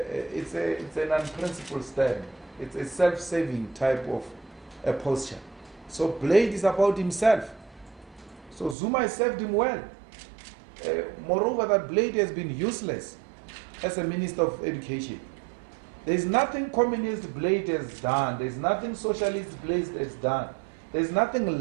an unprincipled stand. It's a self-saving type of posture. So Blade is about himself. So Zuma has served him well. Moreover, that Blade has been useless as a Minister of Education. There's nothing communist Blade has done. There's nothing socialist Blade has done. There's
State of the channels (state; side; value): drops out; left; at 8.8 s